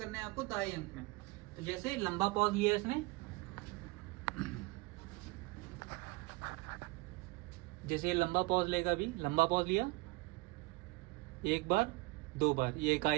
है आपको दहाई अंक में। तो जैसे लंबा पॉज लिया इसने, जैसे लंबा पॉज लेगा, अभी लंबा पॉज लिया, एक बार दो बार, ये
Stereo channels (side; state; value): left; quieter; 22.6 dB